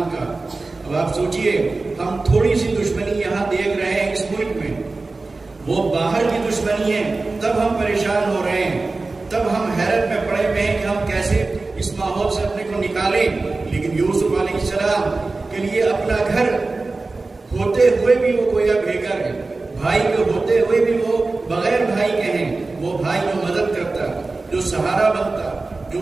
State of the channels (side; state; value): left; quieter; 3.5 dB